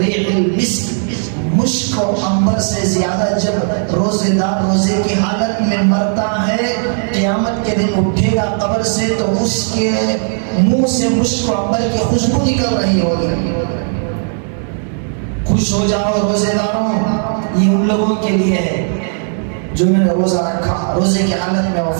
المسک، مشک و عنبر سے زیادہ جب روزے دار روزے کی حالت میں مرتا ہے، قیامت کے دن اٹھے گا قبر سے تو اس کے منہ سے مشک و عنبر کی خوشبو نکل رہی ہوگی۔ خوش ہو جاؤ روزے داروں، یہ ان لوگوں کے لیے ہے جو میں نے روزہ رکھا، روزے کی حالت میں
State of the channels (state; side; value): silent; left; 70 dB below the other